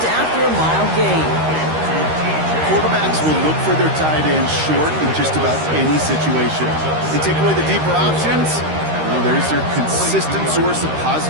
after a mild gain. Quarterbacks will look for their tight ends short in just about any situation. They take away the deeper options. Well, there's their consistent source of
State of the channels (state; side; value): late; left; 13 ms